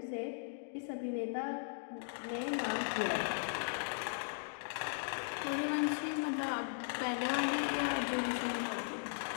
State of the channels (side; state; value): right; silent; digital silence